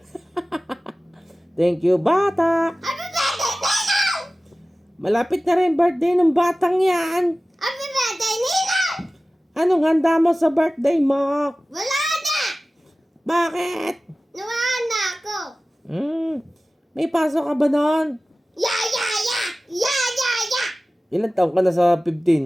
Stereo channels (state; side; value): normal; both; correlation 0.97